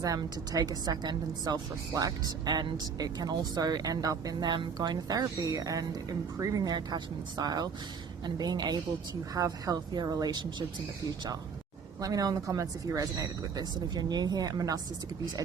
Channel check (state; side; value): quieter; left; 6.1 dB